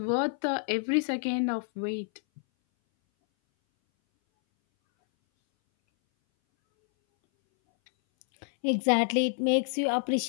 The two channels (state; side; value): silent; right; 59 dB below the other